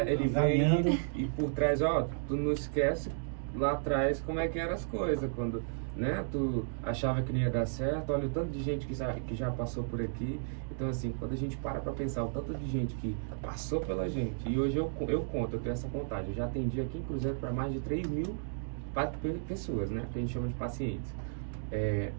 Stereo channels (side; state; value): left; silent; digital silence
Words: ele vem e por trás, ó, tu não esquece lá atrás como é que eram as coisas, quando, né, tu achava que não ia dar certo, olha o tanto de gente que já passou por aqui. Então assim, quando a gente para pensar o tanto de gente que passou pela gente, e hoje eu tenho essa contagem, eu já atendi aqui em Cruzeiro para mais de 3.000 pessoas, né, que a gente chama de pacientes.